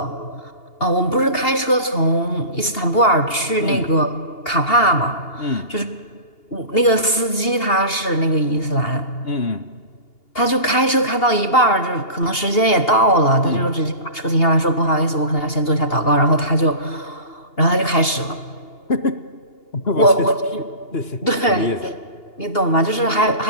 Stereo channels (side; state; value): right; late; 2.8 ms